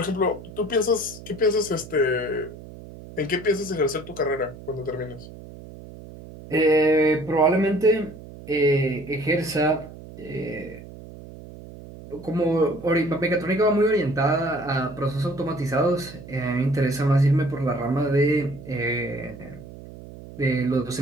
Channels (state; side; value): noise; right; hum, 16 dB below the sound